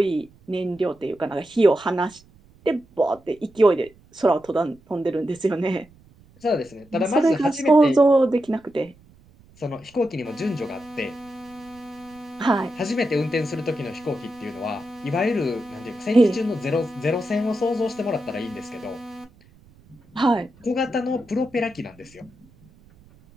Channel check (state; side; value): noise; right; rumble, 27 dB below the sound